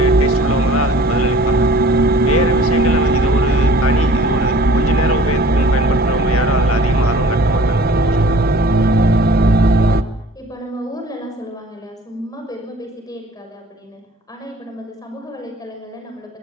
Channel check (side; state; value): both; normal; correlation 0.49